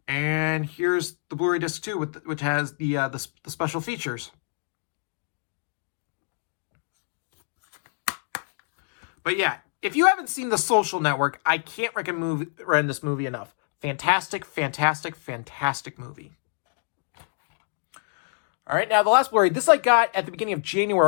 And here's the Blu-ray disc 2, which has the special features. But yeah, if you haven't seen The Social Network, I can't recommend this movie enough. Fantastic, fantastic, fantastic movie. All right, now the last Blu-ray. This I got at the beginning of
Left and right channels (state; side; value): silent; right; digital silence